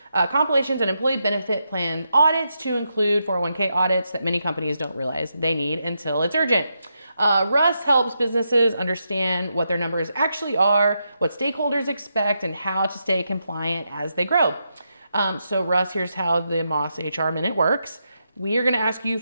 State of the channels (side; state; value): both; inverted; correlation -0.84